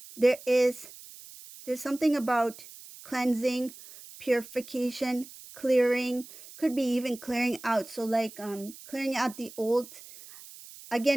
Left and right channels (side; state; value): right; noise; hiss, 18 dB below the sound